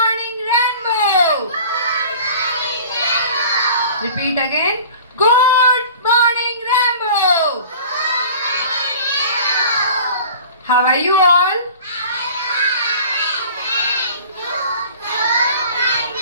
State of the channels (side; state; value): both; inverted; correlation -0.43